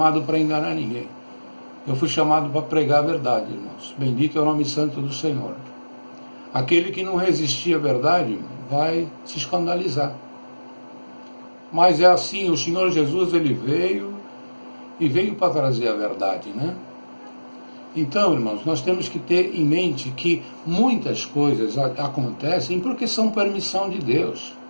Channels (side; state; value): both; inverted; correlation -1.00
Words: para enganar ninguém. Eu fui chamado para pregar a verdade, irmãos. Bendito é o nome santo do Senhor. Aquele que não resistir à verdade vai se escandalizar. Mas é assim, o Senhor Jesus, ele veio para trazer a verdade, né? Então, irmãos, nós temos que ter em mente que muitas coisas acontecem porque são permissão de Deus.